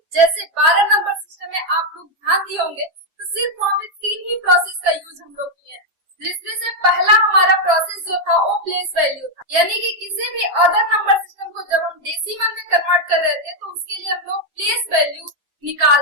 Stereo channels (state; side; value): late; left; 7.5 ms